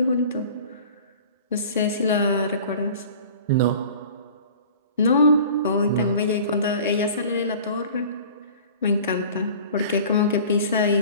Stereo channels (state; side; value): inverted; both; correlation -0.43